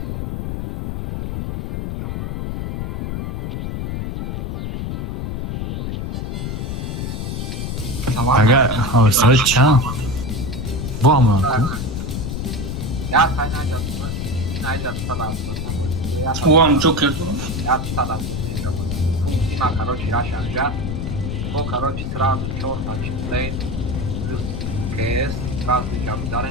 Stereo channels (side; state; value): left; noise; rumble, 3 dB below the sound